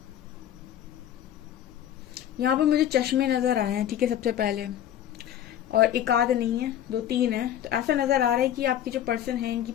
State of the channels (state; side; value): quieter; right; 11.0 dB